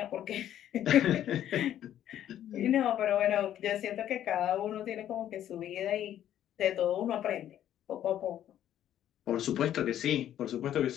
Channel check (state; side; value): quieter; right; 11.3 dB